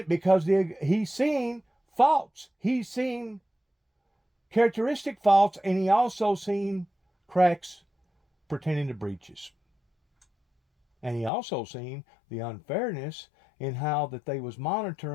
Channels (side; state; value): right; drops out; at 11.3 s